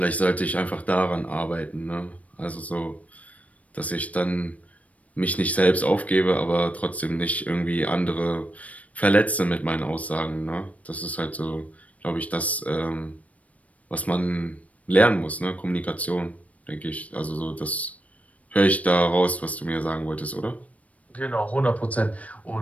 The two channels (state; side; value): late; right; 0.068 ms